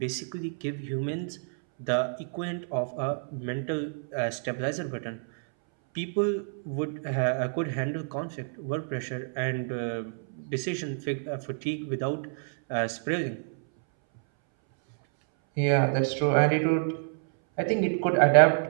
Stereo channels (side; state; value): left; silent; 59 dB below the other